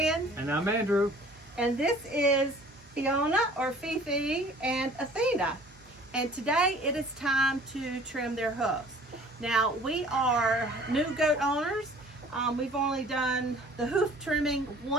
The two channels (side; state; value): both; normal; correlation 0.50